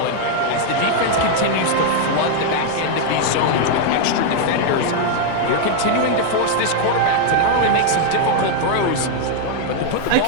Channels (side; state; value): both; different; correlation 0.00